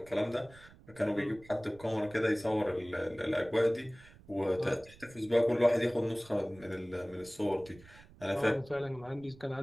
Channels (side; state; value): right; noise; rumble, 22 dB below the sound